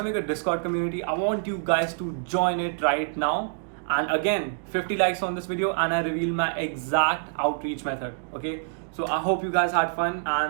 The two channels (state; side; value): silent; left; digital silence